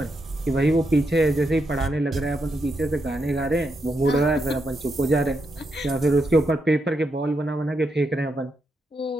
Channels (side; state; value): both; normal; correlation 0.82